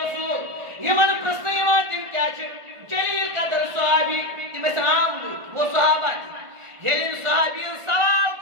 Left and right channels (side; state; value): left; late; 1.4 ms